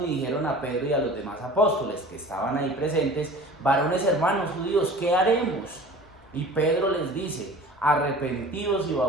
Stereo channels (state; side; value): normal; both; correlation 0.42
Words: y dijeron a Pedro y a los demás apóstoles que estaban ahí presentes, varones hermanos judíos, ¿qué haremos? Y Pedro les dice, arrepentidos y